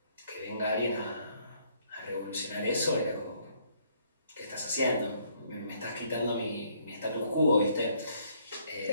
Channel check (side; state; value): both; inverted; correlation -0.67